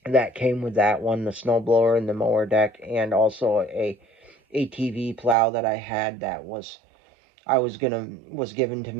that came with that one, the snowblower and the mower deck, and also a ATV plow that I had that was given to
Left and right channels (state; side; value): drops out; left; at 5.4 s